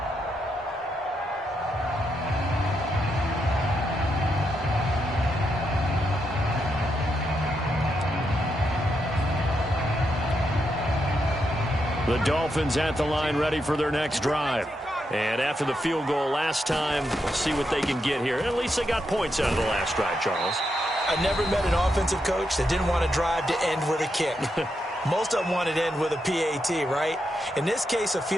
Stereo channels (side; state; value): both; normal; correlation 0.82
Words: The Dolphins at the line ready for their next drive. And after the field goal last time, we'll see what they can get here. At least they got points out of the last drive, Charles. I never met an offensive coach that didn't want to drive to end with a kick. Most of them wanted to end with a PAT, right? In this case, a